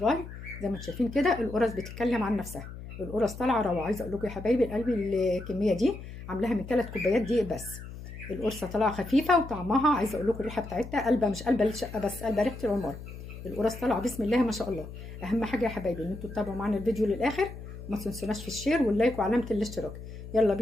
زي ما انتم شايفين كده القرص بتتكلم عن نفسها، القرص طالعه روعه. عايزه اقول لكم يا حبايبي قلبي الكميه دي عاملاها من 3 كوبايات دقيق بس. القرصه طالعه خفيفه وطعمها، عايزه اقول لكم الريحه بتاعتها قلبه، مش قلبه الشقه بس، قلبه ريحه العمر. القرص طالعه بسم الله ما شاء الله. اهم حاجه يا حبايبي ان انتوا تتابعوا معانا الفيديو للاخر، وما تنسوناش في الشير واللايك وعلامه الاشتراك. يلا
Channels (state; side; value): noise; left; hum, 12 dB below the sound